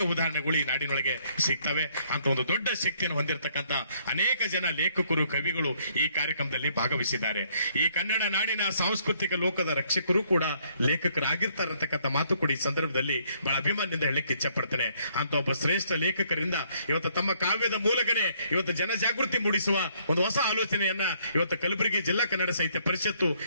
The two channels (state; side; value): inverted; both; correlation -0.67